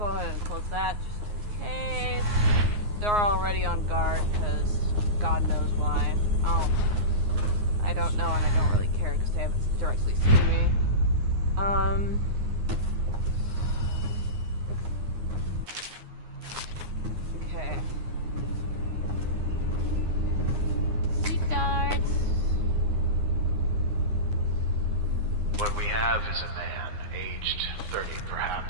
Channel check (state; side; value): late; left; 9.6 ms